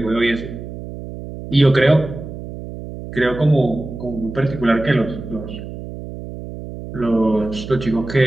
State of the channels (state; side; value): noise; right; hum, 11 dB below the sound